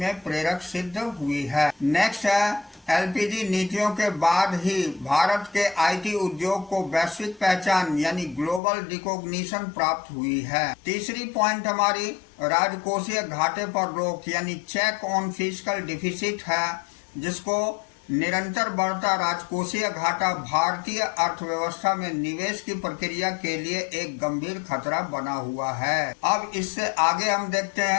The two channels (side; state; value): right; drops out; at 8.6 s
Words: प्रेरक सिद्ध हुई है। नेक्स्ट है एलपीजी नीतियों के बाद ही भारत के आईटी उद्योग को वैश्विक पहचान यानी ग्लोबल रिकॉग्निशन प्राप्त हुई है। तीसरी पॉइंट हमारी राजकोषीय घाटे पर रोक यानी चेक ऑन फिस्कल डिफिसिट है, जिसको निरंतर बढ़ता राजकोषीय घाटा भारतीय अर्थव्यवस्था में निवेश की प्रक्रिया के लिए एक गंभीर खतरा बना हुआ है। अब इससे आगे हम देखते